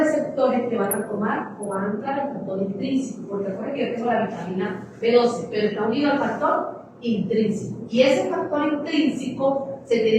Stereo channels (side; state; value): both; identical; correlation 1.00